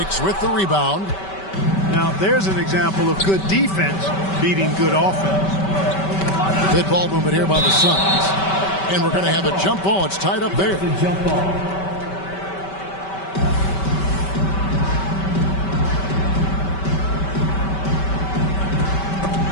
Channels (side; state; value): right; late; 5.2 ms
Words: with the rebound. Now, there's an example of good defense beating good offense. Good ball movement here by the Suns. And we're going to have a jump ball. It's tied up there. Jump ball.